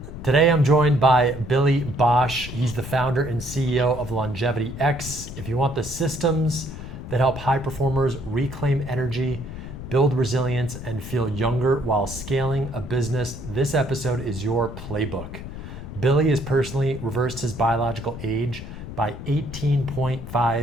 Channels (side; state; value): left; noise; rumble, 10 dB below the sound